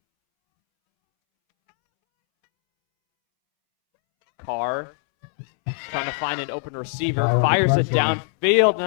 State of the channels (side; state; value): right; silent; 64 dB below the other